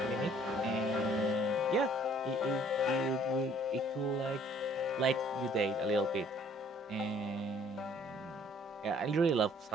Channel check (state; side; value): normal; both; correlation 0.58